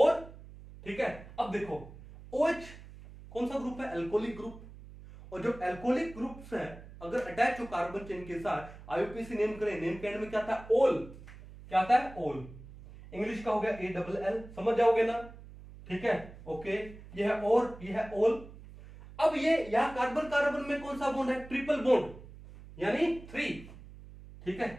ठीक है। अब देखो OH कौन सा ग्रुप है, एल्कोहलिक ग्रुप, और जब एल्कोहलिक ग्रुप से अगर अटैच हो कार्बन चेन के साथ, IUPAC नेम करें, नेम के एंड में क्या था, ओल, क्या आता है, ओल। इंग्लिश का हो गया ALL, समझ जाओगे ना, ठीक है, ओके। ये है और, ये है ऑल। अब ये यहां कार्बन कार्बन में कौन सा बॉन्ड है, ट्रिपल बॉन्ड, यानी 3, ठीक है,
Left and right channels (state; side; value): noise; right; hum, 17 dB below the sound